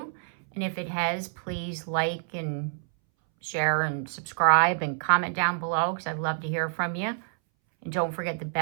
And if it has, please like and share and subscribe and comment down below, because I'd love to hear from you. And don't forget the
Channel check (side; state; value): left; silent; 60 dB below the other